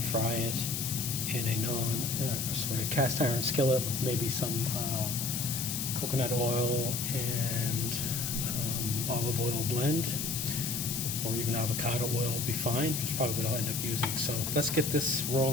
fry it in a cast iron skillet with maybe some coconut oil and olive oil blend, or even avocado oil will be fine. That's probably what I'll end up using. So let's get this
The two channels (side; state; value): left; noise; hiss, 2 dB below the sound